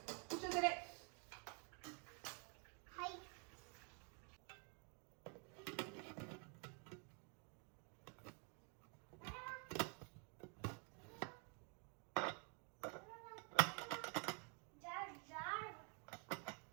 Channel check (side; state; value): left; quieter; 37.2 dB